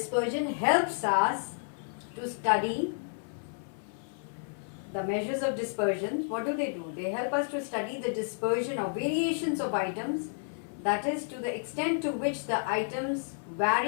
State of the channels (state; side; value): silent; right; 55 dB below the other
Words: helps us to study the measures of dispersion. What do? They help us to study the dispersion of variations of items, that is, to the extent to which the items